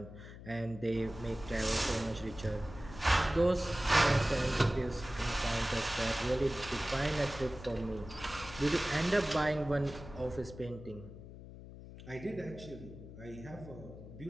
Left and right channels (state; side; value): noise; left; hum, 14 dB below the sound